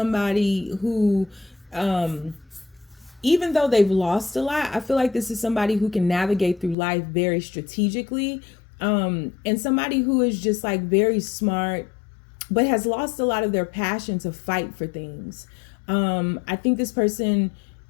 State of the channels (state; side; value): drops out; right; at 6.8 s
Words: who, even though they've lost a lot, I feel like this is somebody who can navigate through life very strategically, and somebody who is just like very smart, but has lost a lot of their passion to fight for things. I think this person